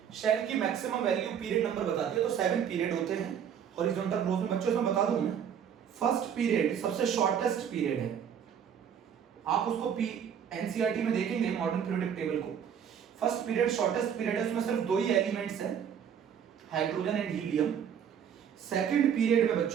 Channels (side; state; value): left; quieter; 8.3 dB